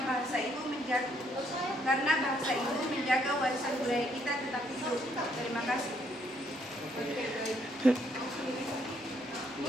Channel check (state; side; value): normal; both; correlation 0.70